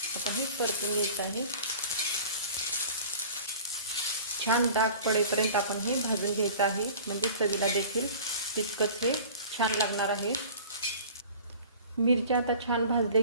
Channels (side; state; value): both; inverted; correlation -0.42